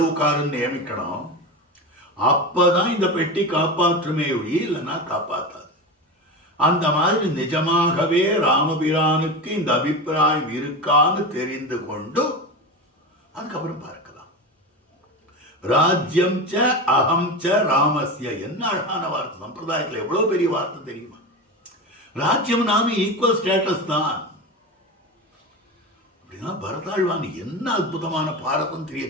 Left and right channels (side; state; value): both; normal; correlation 0.23